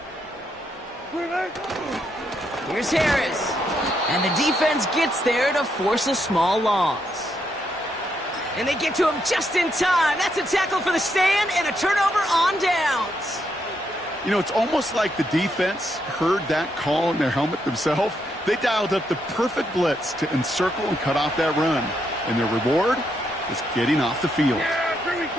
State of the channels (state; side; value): normal; both; correlation 0.78